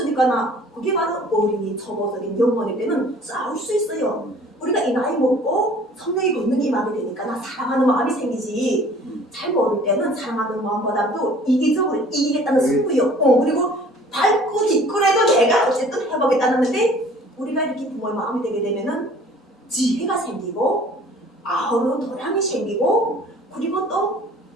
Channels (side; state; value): both; normal; correlation 0.51